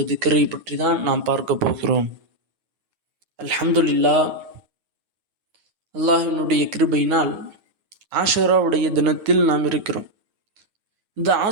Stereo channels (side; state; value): left; late; 9.4 ms